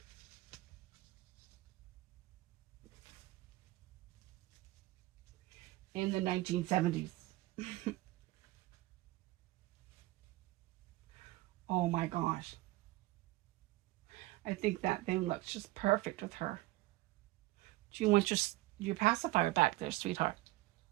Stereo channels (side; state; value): left; quieter; 19.0 dB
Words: In the 1970s. Oh my gosh. I think that thing looks just perfect with her. Do you want your pacifier back there, sweetheart?